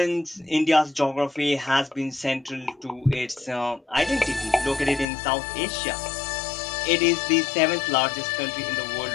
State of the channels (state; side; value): drops out; right; at 5.1 s